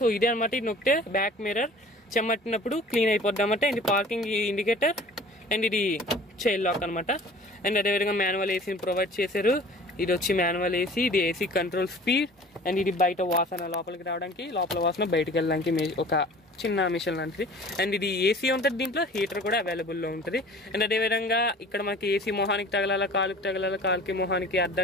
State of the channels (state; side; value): normal; both; correlation 0.46